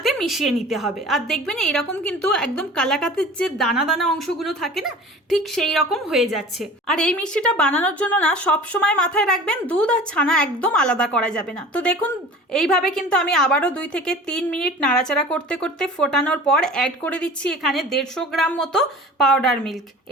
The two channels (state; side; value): normal; both; correlation 0.41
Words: মিশিয়ে নিতে হবে। আর দেখবেন এইরকম কিন্তু একদম কালাকাতের যে দানা দানা অংশগুলো থাকে না, ঠিক সেই রকম হয়ে যাচ্ছে। আর এই মিষ্টিটা বানানোর জন্য না সব সময় মাথায় রাখবেন দুধ আর ছানা একদম আলাদা করা যাবে না। তো দেখুন, এইভাবে কিন্তু আমি আবারও 2 থেকে 3 মিনিট নাড়াচাড়া করতে করতে ফোটানোর পর অ্যাড করে দিচ্ছি এখানে 150 গ্রাম মতো পাউডার মিল্ক।